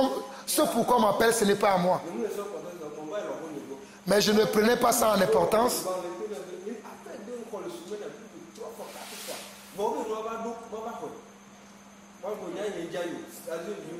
on m'appelle, ce n'est pas à moi. Mais je ne prenais pas ça en importance.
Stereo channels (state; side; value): identical; both; correlation 1.00